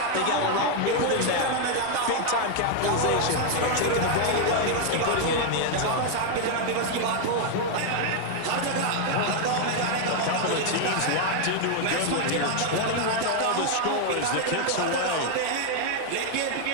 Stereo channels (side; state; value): both; different; correlation 0.00